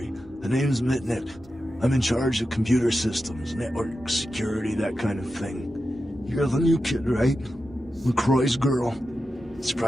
The name's Mitnick. I'm in charge of computer systems, network security, that kind of thing. You're the new kid, right? LaCroix's girl.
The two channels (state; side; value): normal; both; correlation 0.90